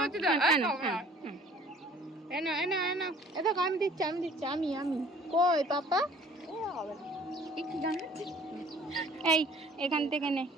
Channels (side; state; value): both; normal; correlation 0.52